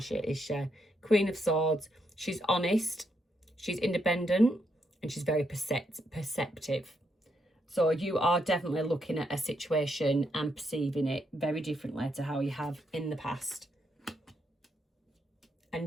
is she? Queen of Swords. She's honest. She's independent. And she's very perceptive. So you are definitely looking at a situation and perceiving it very differently to how you have in the past.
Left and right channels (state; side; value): normal; both; correlation 0.78